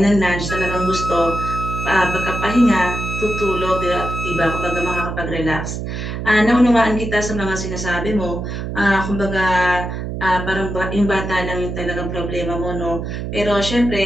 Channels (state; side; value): noise; right; hum, 5 dB below the sound